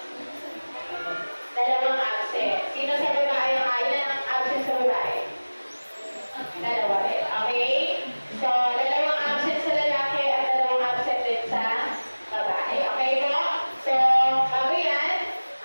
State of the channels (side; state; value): both; inverted; correlation -1.00